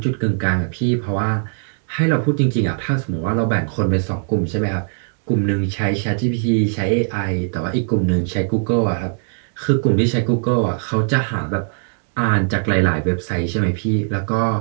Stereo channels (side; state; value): left; silent; digital silence